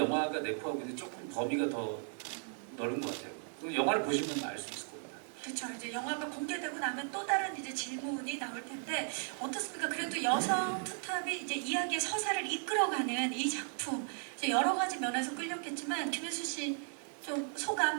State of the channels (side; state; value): left; silent; 54 dB below the other